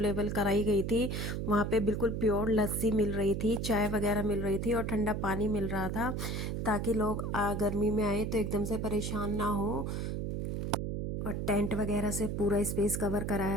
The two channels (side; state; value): right; noise; hum, 2 dB below the sound